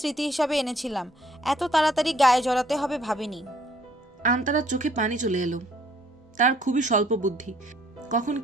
হিসাবে এনেছিলাম। এত তাড়াতাড়ি গায়ে জড়াতে হবে ভাবিনি। আন্তারার চোখে পানি চলে এলো। তার খুবই স্বল্প বুদ্ধি, কখন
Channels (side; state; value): both; normal; correlation 0.62